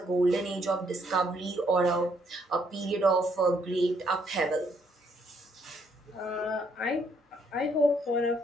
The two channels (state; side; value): normal; both; correlation 0.70